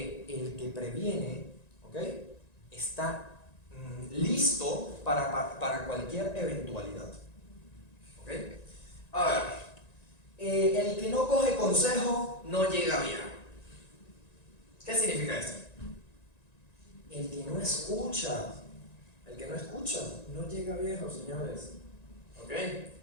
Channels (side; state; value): right; late; 1.9 ms